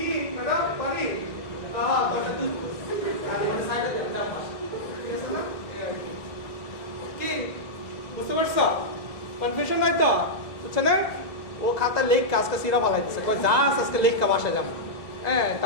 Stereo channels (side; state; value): right; late; 2.0 ms